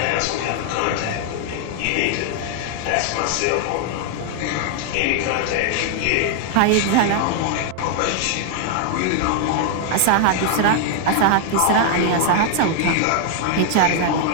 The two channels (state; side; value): different; both; correlation 0.00